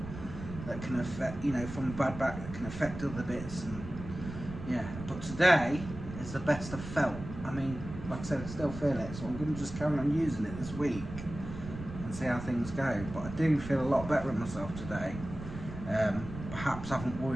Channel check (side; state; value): right; noise; rumble, 10 dB below the sound